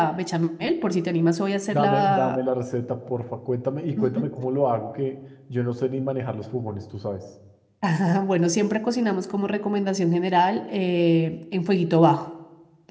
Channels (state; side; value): identical; both; correlation 1.00